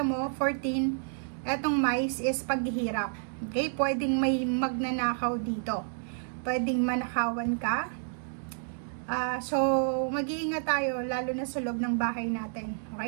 14, etong mice is paghihirap. Okay? Pwedeng may magnanakaw dito. Pwedeng manakawan ka. So, mag-iingat tayo, lalo na sa loob ng bahay natin.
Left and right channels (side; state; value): left; silent; digital silence